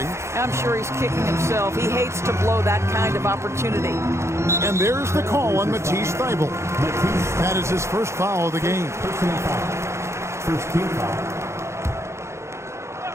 I'm sure he's kicking himself. He hates to blow that kind of opportunity. And there's the call on Matisse Thybulle. That is his first foul of the game. First team foul.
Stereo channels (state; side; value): late; left; 0.13 ms